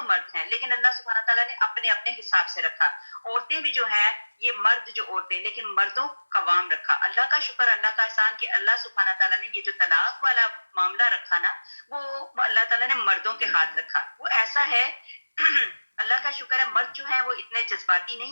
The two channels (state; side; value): inverted; both; correlation -1.00